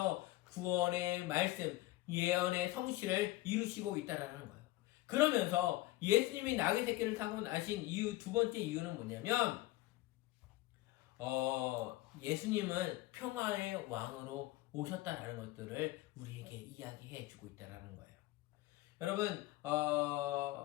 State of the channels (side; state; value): right; quieter; 18.1 dB